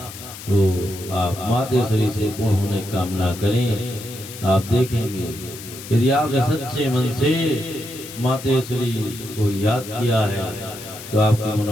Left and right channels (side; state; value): left; noise; hiss, 13 dB below the sound